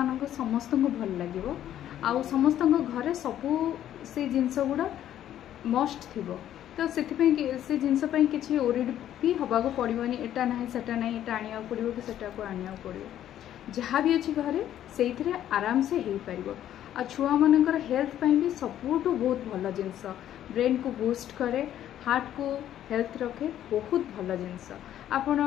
समस्त को भल लगे आउ समस्त घरे सबू से जिनस गुड़ा मस्ट थी तो से जिनस किसी ओरिड भी हवाक पड़ोनी एटा ना सेटा ना एटा आने पड़ो कि सेटा को आने पड़ो जहाँ भी अच्छी घरे से आराम से हो पार आ छुआ मानकर हेल्थ पाई भी सबुठ बहुत भल जिनस ब्रेन को बूस्ट करे हार्ट को हेल्थ रखे बहुत भल जिनस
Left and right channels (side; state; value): right; quieter; 11.4 dB